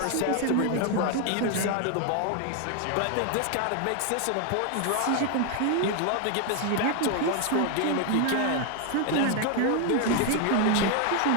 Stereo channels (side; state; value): both; different; correlation 0.00